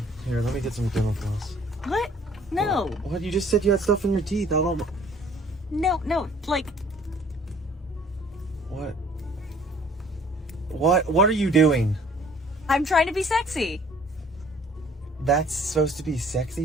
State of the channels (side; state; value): both; normal; correlation 0.55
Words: Here, let me get some dental floss. What? No. What? You just said you had stuff in your teeth. I don't. No, like... What? What are you doing? I'm trying to be sexy. That's supposed to be